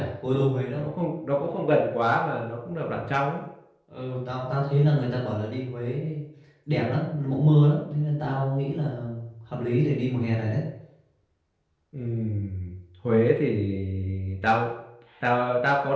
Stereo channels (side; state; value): both; identical; correlation 1.00